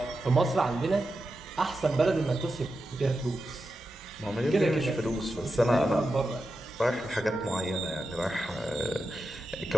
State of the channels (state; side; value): normal; both; correlation 0.89